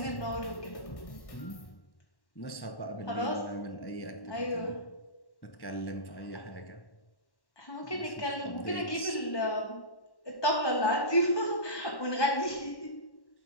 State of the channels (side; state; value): right; late; 1.1 ms